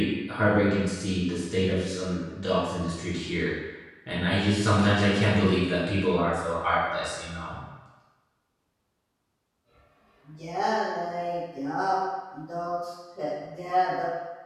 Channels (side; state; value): both; identical; correlation 1.00